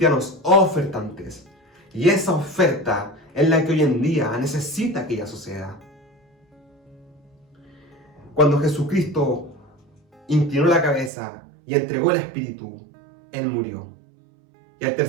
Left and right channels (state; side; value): drops out; left; at 11.1 s